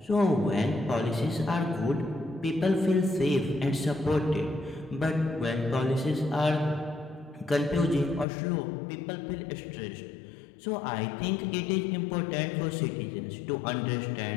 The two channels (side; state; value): right; drops out; at 8.2 s